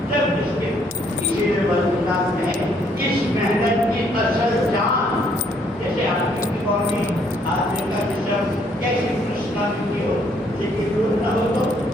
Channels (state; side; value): normal; both; correlation 0.67